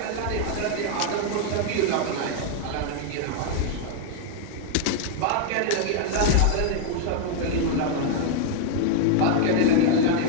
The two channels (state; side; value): different; both; correlation 0.00